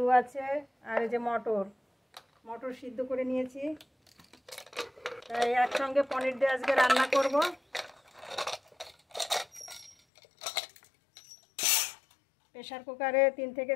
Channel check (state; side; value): drops out; right; at 10.0 s